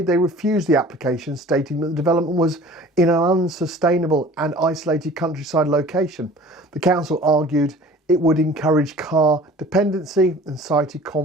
they refused the application, stating that the development was in an unsustainable and isolated countryside location. The council argued it would encourage car dependency and cited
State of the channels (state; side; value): normal; both; correlation 0.46